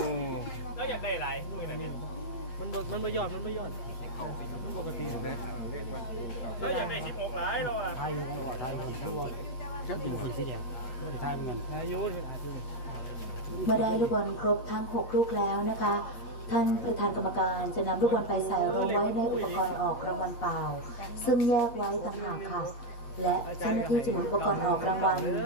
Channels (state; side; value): late; right; 8.2 ms